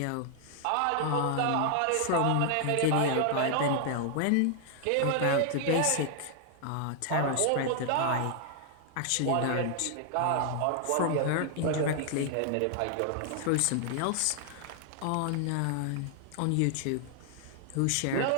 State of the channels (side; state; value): both; different; correlation 0.00